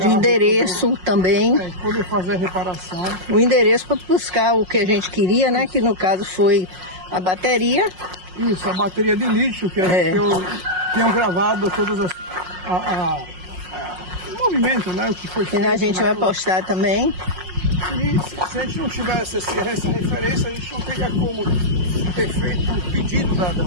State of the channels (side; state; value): left; late; 5.5 ms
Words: endereço também. Poder fazer a reparação. O endereço para buscar o que a gente queria, né? Que no caso foi a bateria. Isso, a bateria de lítio, que eu tinha gravado todas as... o movimento, né? O que foi feito. E a gente vai postar também. E se a gente não tivesse essa referência, a gente não teria como ter feito o pedido das